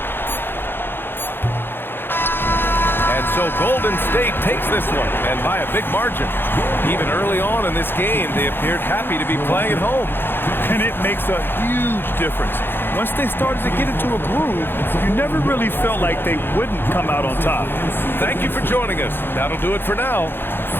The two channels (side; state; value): right; late; 0.10 ms